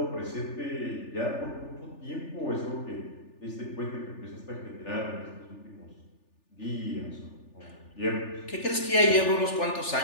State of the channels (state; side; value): late; right; 3.4 ms